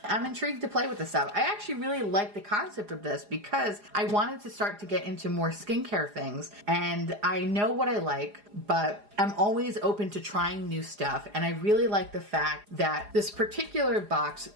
I'm intrigued to play with this stuff. I actually really like the concept of this because I wanted to start to get into more skincare things, and I know what I like, but I'm always open to trying new stuff, and I really like the fact that this particular box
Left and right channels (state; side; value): late; left; 4.9 ms